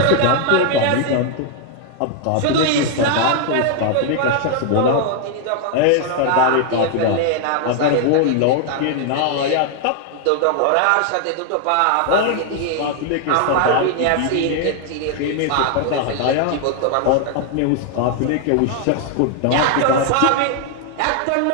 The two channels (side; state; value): both; different; correlation 0.00